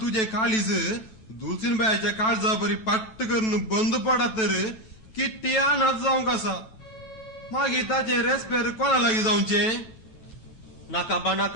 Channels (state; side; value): late; right; 9.1 ms